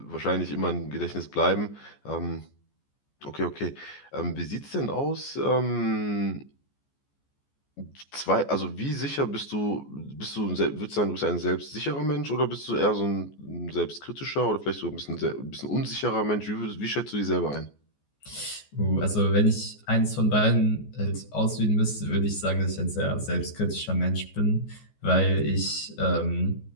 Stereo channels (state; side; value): late; right; 14 ms